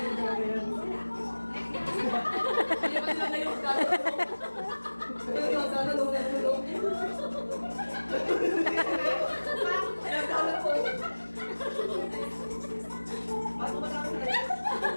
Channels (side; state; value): both; inverted; correlation -1.00